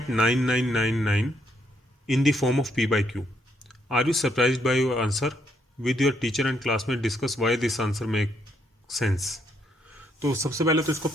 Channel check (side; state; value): both; normal; correlation 0.74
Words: in the form of p/q, are you surprised by your answer, with your teacher and classmate discuss why this answer make sense. तो सबसे पहले तो इसको